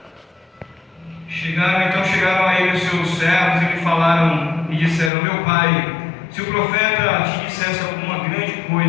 a ele os seus servos e lhe falaram e disseram: meu pai, se o profeta te dissesse alguma grande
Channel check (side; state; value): right; drops out; at 5.1 s